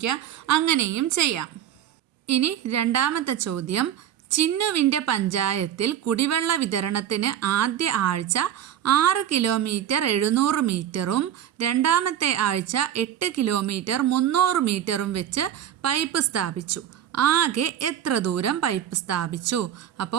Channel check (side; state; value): left; quieter; 10.4 dB